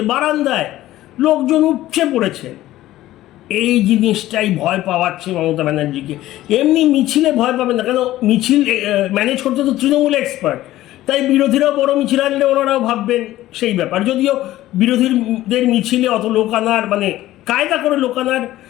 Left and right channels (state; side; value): quieter; right; 15.1 dB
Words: বারান্দায় লোকজন উপচে পড়েছে। এই জিনিসটাই ভয় পাওয়াচ্ছে মমতা ব্যানার্জিকে। এমনি মিছিলে ভয় পাবে না, কেন মিছিল ম্যানেজ করতে তো তৃণমূল এক্সপার্ট, তাই বিরোধীরাও বড় মিছিল আনলে ওনারাও ভাববেন সেই ব্যাপার। যদিও বিরোধীদের মিছিলে অত লোক আনার, মানে কায়দা করে লোক আনার